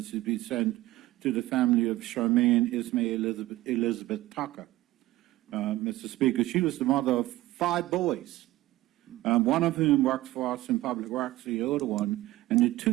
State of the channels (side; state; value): left; quieter; 16.8 dB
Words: be sent to the family of Charmaine Ismail Elizabeth Tucker. Mr. Speaker, she was the mother of 5 boys, one of whom works for us in public works, the older one, and the